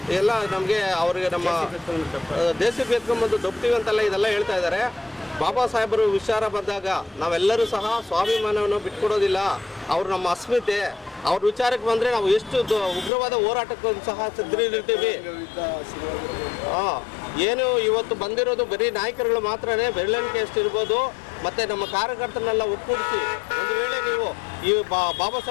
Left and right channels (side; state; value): right; drops out; at 13.1 s